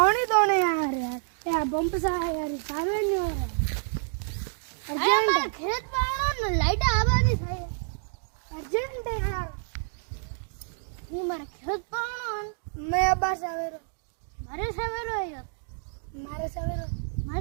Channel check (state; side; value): silent; left; digital silence